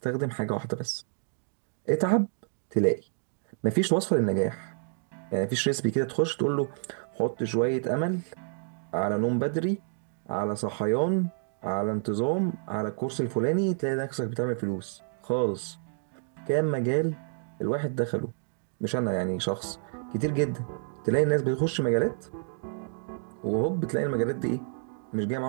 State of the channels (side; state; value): left; silent; digital silence